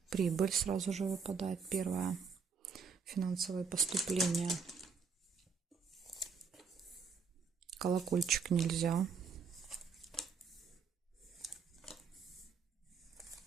Прибыль сразу же выпадает, первое, финансовое поступление. Колокольчик нельзя.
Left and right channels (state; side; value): quieter; left; 5.7 dB